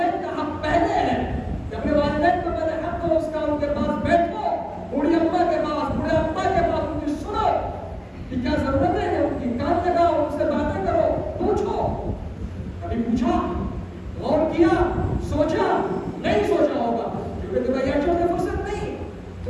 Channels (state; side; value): identical; both; correlation 1.00